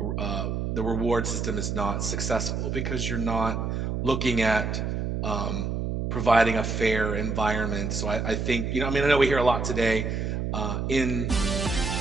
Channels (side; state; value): right; noise; hum, 1 dB below the sound